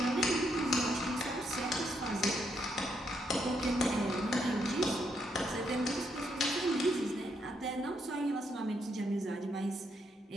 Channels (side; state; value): both; normal; correlation 0.77